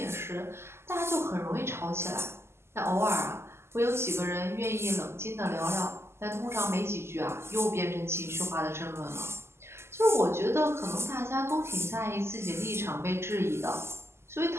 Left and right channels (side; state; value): left; late; 0.12 ms